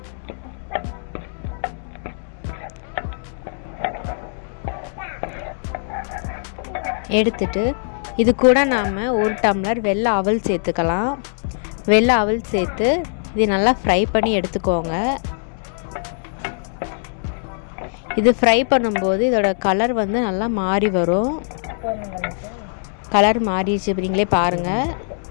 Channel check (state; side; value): silent; right; digital silence